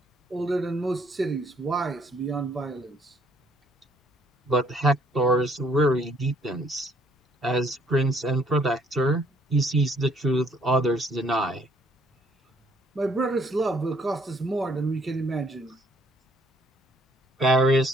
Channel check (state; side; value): normal; both; correlation 0.64